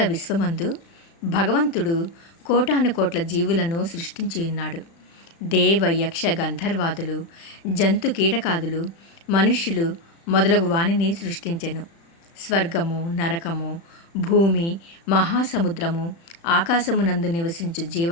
విశ్వమందు భగవంతుడు కోటాను కోట్ల జీవులను సృష్టించి ఉన్నాడు. దేవ యక్ష గంధర్వాదులు, జంతు కీటకాదులు, మనుష్యులు మొదలగు వాణిని సృష్టించెను. స్వర్గము, నరకము, భూమి, మహాసముద్రము, ఆకాశమునందు నివసించు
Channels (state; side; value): late; right; 36 ms